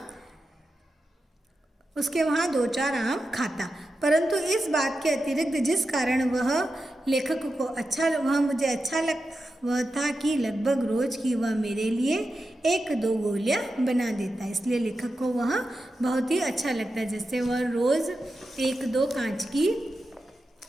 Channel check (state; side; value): normal; both; correlation 0.90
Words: उसके वहाँ 2-4 आम खाता। परंतु इस बात के अतिरिक्त जिस कारण वह लेखक को मुझे अच्छा लगता वह था कि लगभग रोज की वह मेरे लिए 1-2 गोलियाँ बना देता। इसलिए लेखक को वह बहुत ही अच्छा लगता है, जैसे वह रोज़ 1-2 कांच की